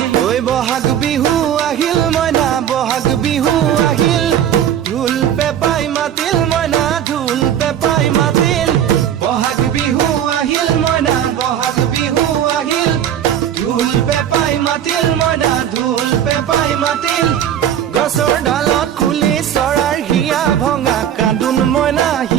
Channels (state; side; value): quieter; left; 10.0 dB